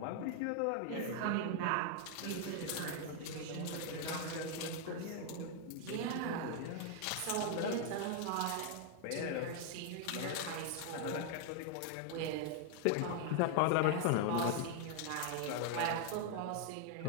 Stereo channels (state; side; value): different; both; correlation 0.00